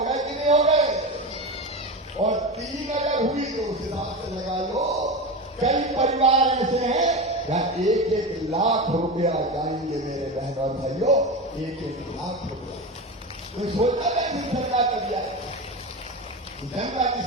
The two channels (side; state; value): both; normal; correlation 0.22